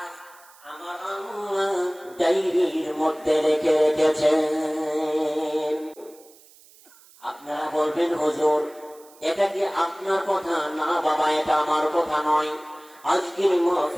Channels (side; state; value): right; noise; hiss, 26 dB below the sound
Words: আমার আল্লাহ ডায়েরির মধ্যে রেখে রেখেছেন। আপনারা বলবেন, হুজুর এটা কি আপনার কথা? না বাবা, এটা আমার কথা নয়, আজকের